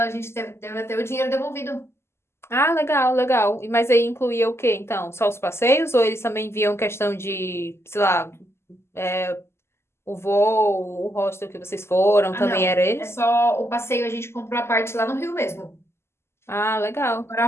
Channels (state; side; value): late; right; 0.12 ms